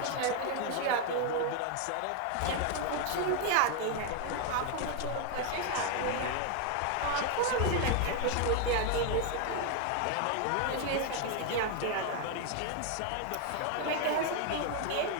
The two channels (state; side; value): different; both; correlation 0.00